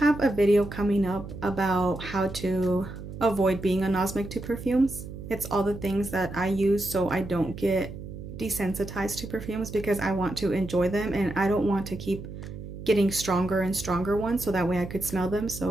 a video coming up about how to avoid being anosmic to perfumes. It's all the things that I use so I don't get desensitized to perfumes, because I want to enjoy them and I don't want to keep getting stronger and stronger ones so that way I could smell them.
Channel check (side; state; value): right; noise; hum, 11 dB below the sound